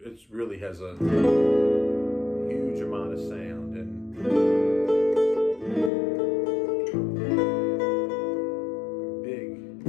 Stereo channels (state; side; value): drops out; right; at 5.9 s